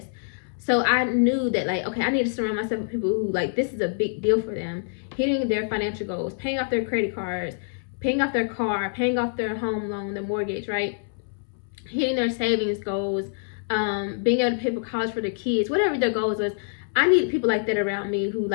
So I knew that, like, okay, I need to surround myself with people who, like, this is a big deal for them. Hitting their financial goals, paying off their credit cards, paying off their car, paying off their home loan, their mortgage, right? Hitting their savings goals, being able to pay for college for their kids, whatever their goals was. I need people like that around me who,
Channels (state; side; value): silent; right; 61 dB below the other